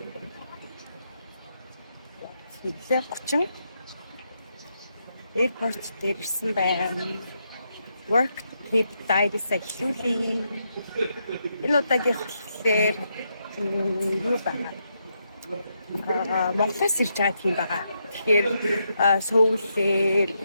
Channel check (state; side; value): inverted; both; correlation -0.81